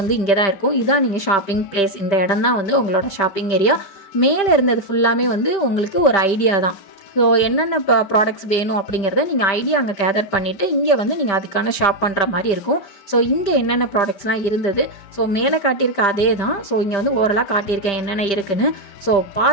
இங்கே தான் இருக்கும். இதான் நீங்கள் ஷாப்பிங் பிளேஸ். இந்த இடம் தான் வந்து உங்களோட ஷாப்பிங் ஏரியா. மேலே இருந்தது ஃபுல்லாமே வந்து உங்களுக்கு ஒரு ஐடியா தான். ஸோ என்னென்ன ப்ராடக்ட்ஸ் வேணும் அப்படிங்கிறத நீங்கள் ஐடியா அங்கே கேதர் பண்ணிவிட்டு இங்கே வந்து நீங்கள் அதுக்கான ஷாப் பண்ணுற மாதிரி இருக்கும். ஸோ இங்கே என்னென்ன ப்ராடக்ட்ஸ்லாம் இருந்தது, ஸோ மேலே காட்டியிருக்க அதே தான். ஸோ இங்கே வந்து ஓரலாக காட்டியிருக்கேன் என்னென்ன இருக்குன்னு. ஸோ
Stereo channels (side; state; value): right; late; 5.1 ms